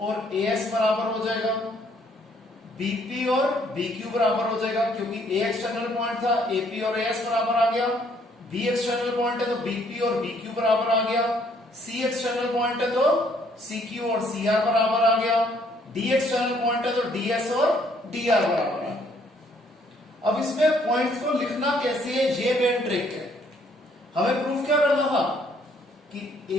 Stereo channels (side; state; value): both; normal; correlation 0.65